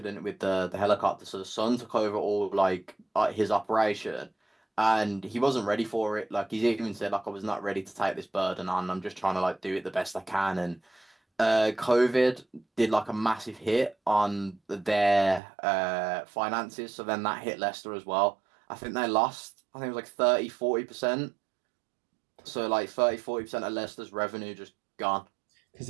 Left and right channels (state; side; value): drops out; left; at 15.4 s